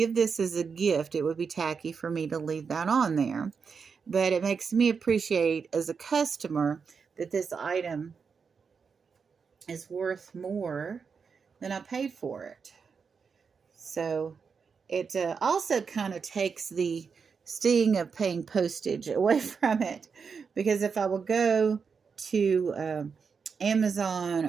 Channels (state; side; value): quieter; left; 5.7 dB